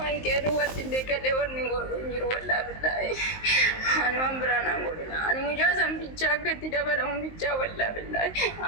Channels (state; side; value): late; right; 19 ms